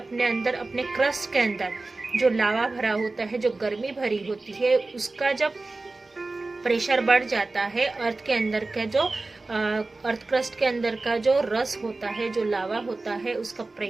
अंदर, अपने क्रस्ट के अंदर जो लावा भरा होता है, जो गर्मी भरी होती है, उसका जब प्रेशर बढ़ जाता है, अर्थ के अंदर का जो अर्थ क्रस्ट के अंदर का जो रस होता है, जो लावा होता है, उसका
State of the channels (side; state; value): left; quieter; 3.3 dB